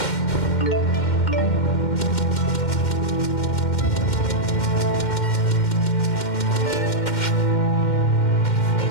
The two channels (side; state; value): right; late; 2.1 ms